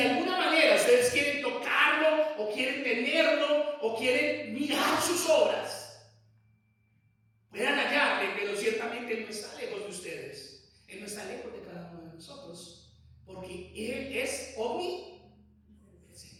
alguna manera ustedes quieren tocarlo, o quieren tenerlo, o quieren mirar sus obras, puedan hallarle, pero ciertamente no está lejos de ustedes. Él no está lejos de cada uno de nosotros, porque Él es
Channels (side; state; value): both; identical; correlation 1.00